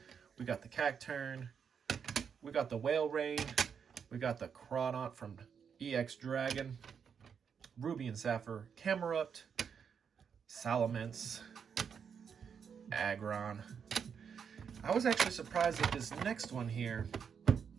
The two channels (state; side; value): quieter; left; 6.9 dB